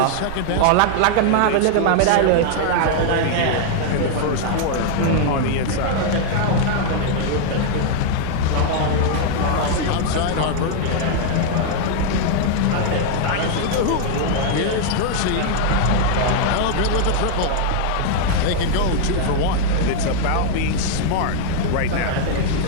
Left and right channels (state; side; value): different; both; correlation 0.00